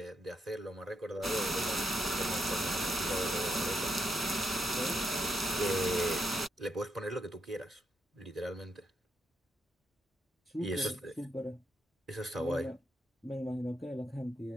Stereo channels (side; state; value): both; normal; correlation 0.80